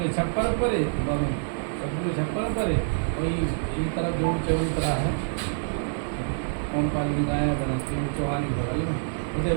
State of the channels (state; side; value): silent; left; digital silence